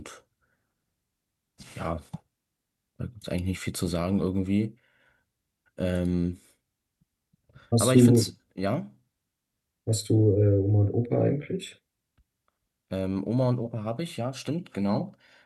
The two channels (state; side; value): identical; both; correlation 1.00